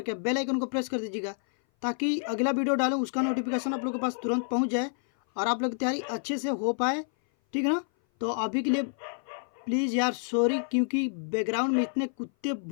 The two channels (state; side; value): silent; right; 57 dB below the other